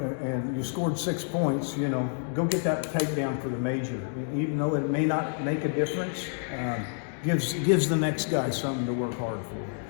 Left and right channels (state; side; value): silent; right; 59 dB below the other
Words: and you scored 6 points. You know, go get that takedown for the major. Even though it may not make a difference, gives the next guy something to work hard for.